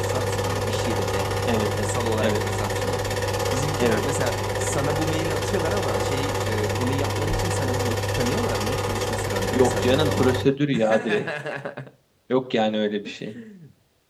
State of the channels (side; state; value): both; identical; correlation 1.00